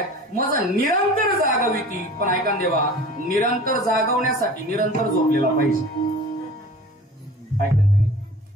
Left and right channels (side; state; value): both; normal; correlation 0.42